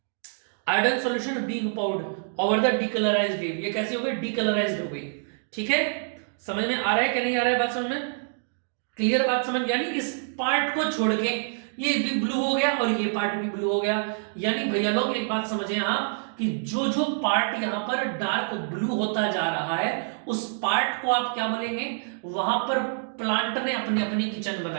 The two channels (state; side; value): silent; left; digital silence